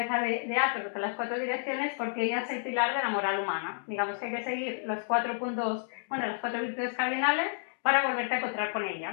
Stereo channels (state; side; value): silent; right; digital silence